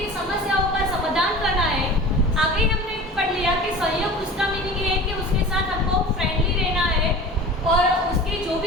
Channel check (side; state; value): both; normal; correlation 0.38